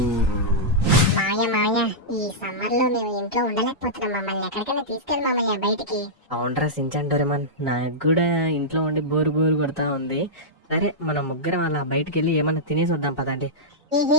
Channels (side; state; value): both; normal; correlation -0.11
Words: మామయ్య ఈ సమ్మర్ లో మేము ఇంట్లో ఉండలేకపోతున్నాం. మమ్మల్ని ఎక్కడికైనా తీసుకెళ్ళి మామయ్య బయటికి. అవునరా సించాన్ డోరేమాన్, నాకు కూడా ఇంట్లో ఉండి బోరు కొడతా ఉంది. సరే మన ముగ్గురం అలా బయటికి వెళ్ళి ఏమన్నా తినేసి వద్దాం పదండి.